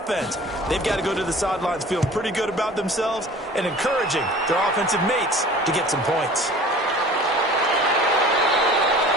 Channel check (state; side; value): normal; both; correlation 0.44